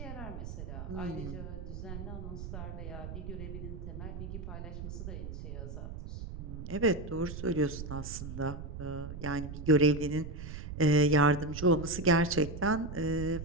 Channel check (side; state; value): right; noise; rumble, 8 dB below the sound